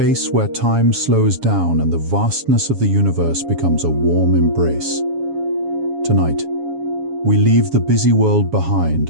where time slows down and the vastness of the universe becomes a warm embrace. Tonight, we leave the busy world behind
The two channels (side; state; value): left; late; 7.2 ms